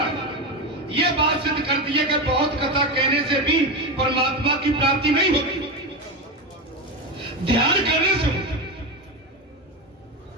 ये बात सिद्ध कर दी है कि बहुत कथा कहने से भी परमात्मा की प्राप्ति नहीं होती, ध्यान करने से होती।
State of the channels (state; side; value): normal; both; correlation 0.16